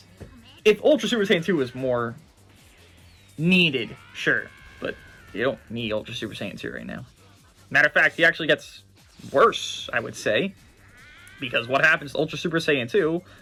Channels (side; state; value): both; identical; correlation 1.00